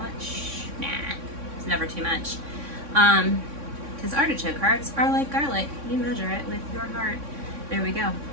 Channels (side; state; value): left; late; 3.6 ms